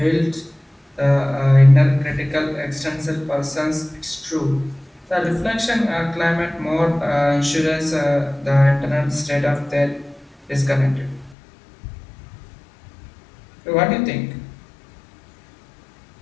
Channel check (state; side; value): drops out; right; at 11.4 s